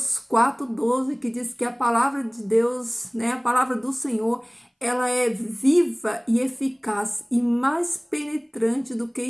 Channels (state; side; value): identical; both; correlation 1.00